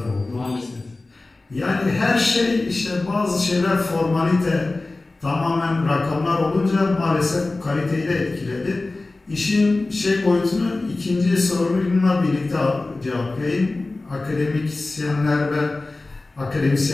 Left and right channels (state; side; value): quieter; right; 3.2 dB